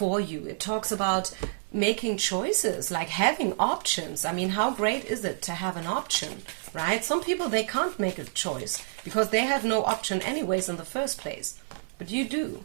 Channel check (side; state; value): left; silent; 59 dB below the other